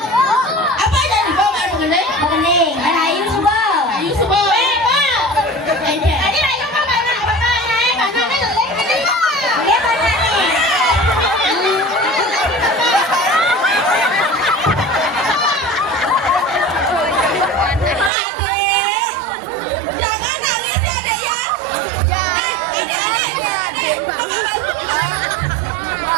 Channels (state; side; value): drops out; left; at 18.1 s